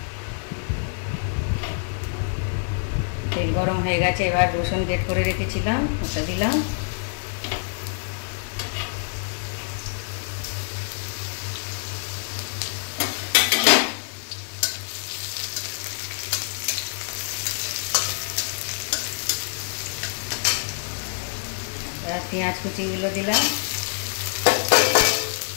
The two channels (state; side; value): silent; right; 61 dB below the other